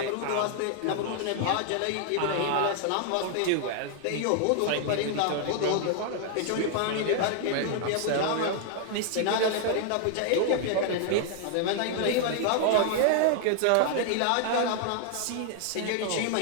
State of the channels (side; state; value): both; different; correlation 0.00